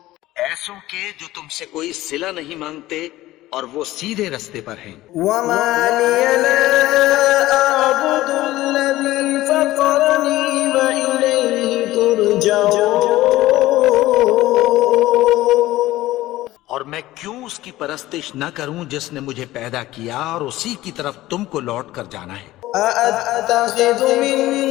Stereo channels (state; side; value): quieter; right; 16.5 dB